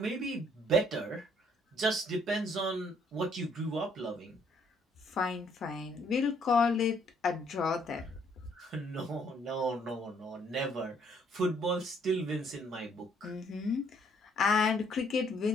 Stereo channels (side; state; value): both; normal; correlation 0.66